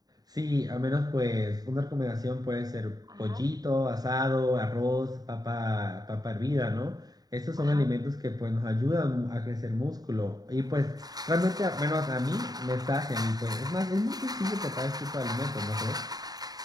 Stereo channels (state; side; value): late; left; 0.19 ms